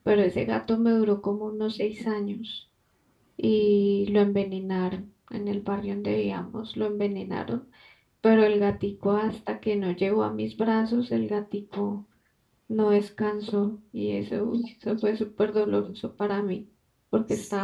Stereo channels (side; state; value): both; identical; correlation 1.00